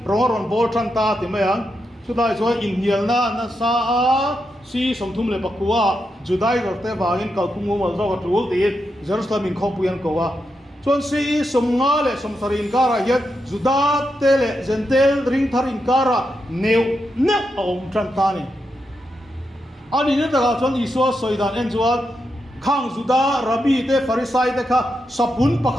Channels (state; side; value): normal; both; correlation 0.85